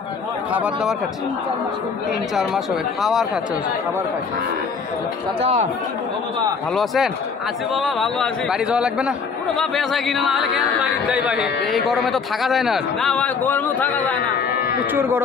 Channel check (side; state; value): right; quieter; 5.4 dB